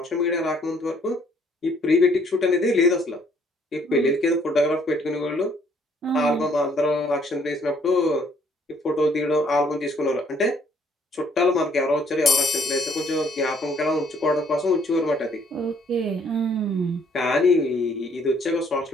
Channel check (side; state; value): both; normal; correlation 0.64